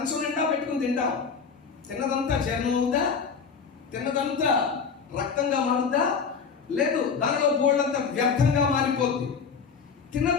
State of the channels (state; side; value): quieter; right; 5.8 dB